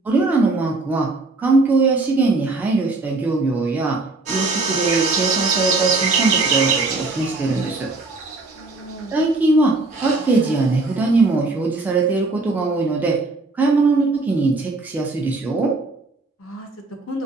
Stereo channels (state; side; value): quieter; left; 3.3 dB